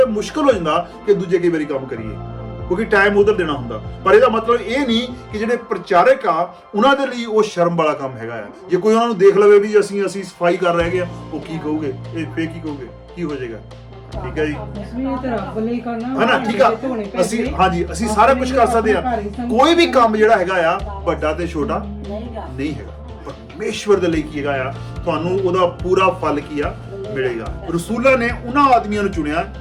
ਮੁਸ਼ਕਲ ਹੋ ਜਾਂਦਾ ਕਿ ਦੂਜੇ ਕਈ ਵਾਰੀ ਕੰਮ ਕਰੀਏ, ਕਿਉਂਕਿ ਟਾਈਮ ਉਧਰ ਦੇਣਾ ਹੁੰਦਾ। ਪਰ ਇਹਦਾ ਮਤਲਬ ਇਹ ਨਹੀਂ ਕਿ ਜਿਹੜੇ ਪ੍ਰਚਾਰਕ ਆ ਉਹਨਾਂ ਦੇ ਲਈ ਉਹ ਸ਼ਰਮ ਵਾਲਾ ਕੰਮ ਹੈਗਾ ਆ। ਜੇ ਕੋਈ ਉਹਨਾਂ ਨੂੰ ਦੇਖ ਲਵੇ ਵੀ ਅਸੀਂ ਸਫਾਈ ਕਰ ਰਹੇ ਹਾਂ, ਉਹ ਕੀ ਕਹੋਗੇ, ਇਹ ਫੇਰ ਕੀ ਕਹੋਗੇ, ਕੀ ਹੋ ਜਾਏਗਾ? ਠੀਕ ਹੈ ਜੀ, ਹਨਾ? ਠੀਕ ਆ, ਅਸੀਂ ਸਾਰਾ ਕੁਝ ਕਰ ਸਕਦੇ ਆ। ਕੋਈ ਵੀ ਕੰਮ ਜਿਹੜਾ ਹੈਗਾ ਆ ਵੱਡਾ ਤੇ ਛੋਟਾ ਨਹੀਂ ਹੈਗਾ। ਪਰਮੇਸ਼ਵਰ ਦੇ ਲਈ ਕੀ ਹੈਗਾ ਆ, ਤੁਹਾਨੂੰ ਉਹਦਾ ਪੂਰਾ ਫਲ ਕੀ ਆ ਮਿਲੇਗਾ। ਰਸੂਲਾਂ ਨੇ ਉਹਨਾਂ ਆਦਮੀਆਂ ਨੂੰ ਚੁਣਿਆ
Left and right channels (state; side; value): identical; both; correlation 1.00